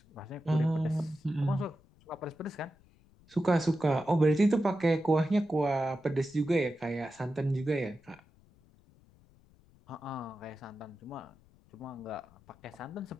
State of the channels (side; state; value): left; noise; rumble, 29 dB below the sound